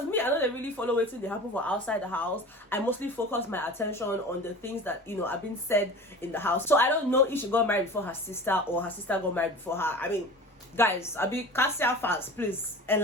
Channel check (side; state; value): both; normal; correlation 0.37